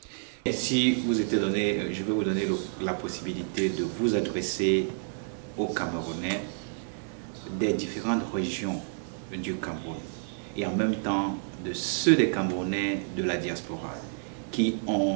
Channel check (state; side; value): silent; left; digital silence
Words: Et si vous étiez donné, je vais vous donner la possibilité de vous adresser aux Camerounais des différentes régions du Cameroun et en même temps de ceux des Camerounais de la diaspora qui